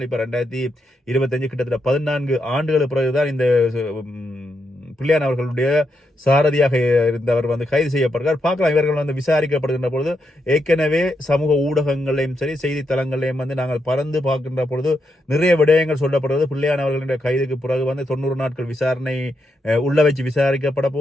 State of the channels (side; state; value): both; normal; correlation 0.82